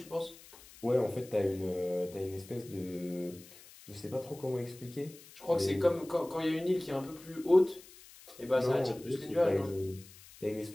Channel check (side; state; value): left; noise; hiss, 21 dB below the sound